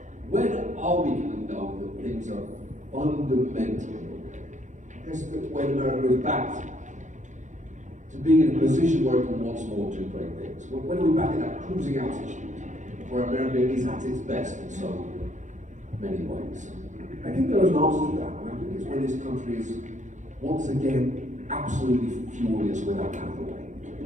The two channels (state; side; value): late; left; 0.35 ms